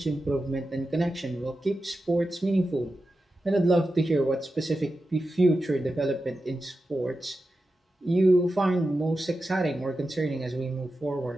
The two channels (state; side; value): normal; both; correlation 0.91